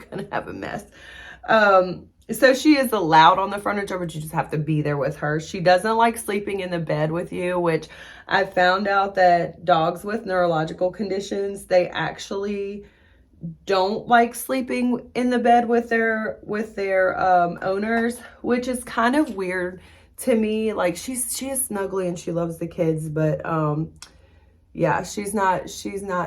gonna have a mess. So she is allowed on the furniture, but you just have to be there with her. She doesn't like sleeping in the bed with you, which I found out that dogs with neurological conditions, they actually don't like sleeping in the bed with their owners, which is kind of weird to me. Like, she is snuggly and she loves the kids, but yeah, she's not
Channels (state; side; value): identical; both; correlation 1.00